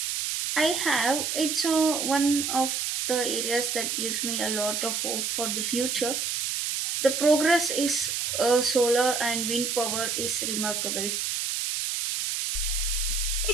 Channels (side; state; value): right; noise; hiss, 1 dB below the sound